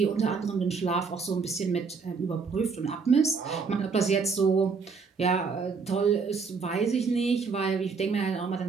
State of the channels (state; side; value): quieter; left; 5.1 dB